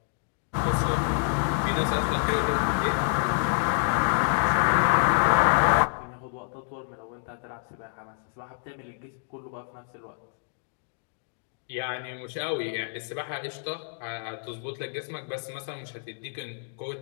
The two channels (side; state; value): right; silent; digital silence